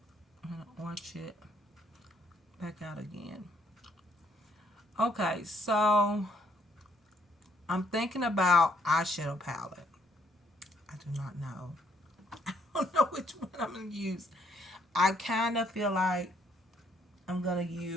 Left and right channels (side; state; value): both; normal; correlation 0.68